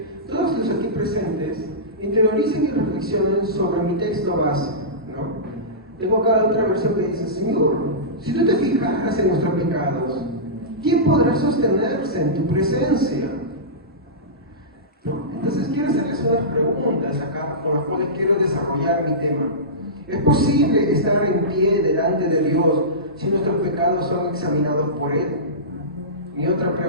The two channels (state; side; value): normal; both; correlation -0.19